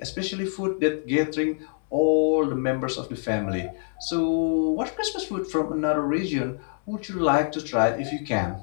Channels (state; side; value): silent; right; 61 dB below the other